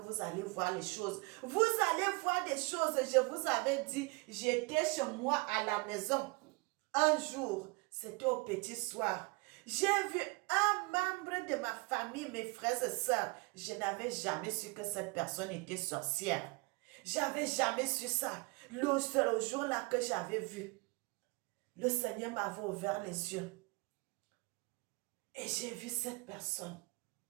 allez voir les choses. Vous allez voir des choses, je vous avais dit, j'étais chez moi à la maison. Un jour, c'était au petit soir. J'ai vu un membre de ma famille, mes frères et sœurs. Je n'avais jamais su que cette personne était sorcière. J'avais jamais su ça. Le seul jour-là que j'avais vu, le Seigneur m'avait ouvert les yeux. Et j'ai vu cette personne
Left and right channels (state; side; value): quieter; left; 28.6 dB